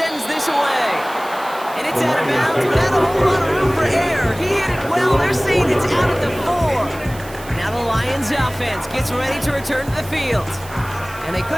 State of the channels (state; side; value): noise; right; hiss, 18 dB below the sound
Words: this away. And it's out of bounds without a whole lot of room for error. He hit it well. They're saying it's out at the 4. Now the Lions offense gets ready to return to the field. And they